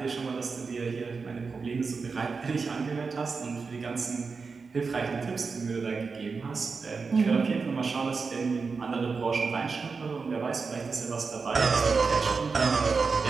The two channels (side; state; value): left; quieter; 4.8 dB